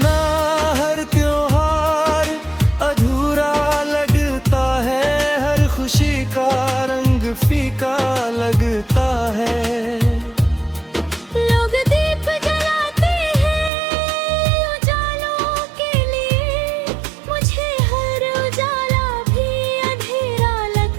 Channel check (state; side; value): drops out; left; at 13.7 s